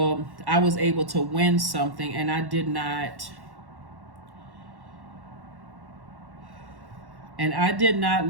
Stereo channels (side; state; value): left; late; 1.1 ms